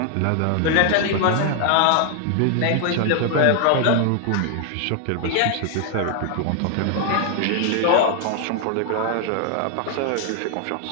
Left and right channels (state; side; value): different; both; correlation 0.00